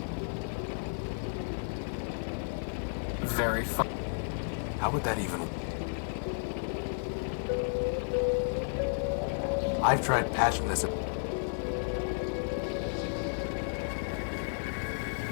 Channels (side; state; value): right; silent; digital silence